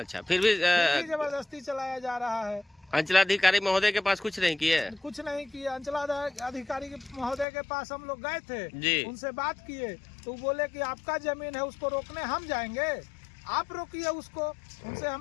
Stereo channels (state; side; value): drops out; right; at 7.5 s